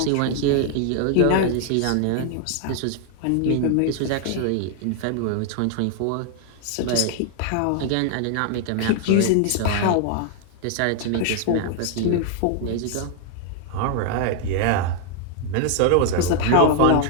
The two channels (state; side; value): different; both; correlation 0.00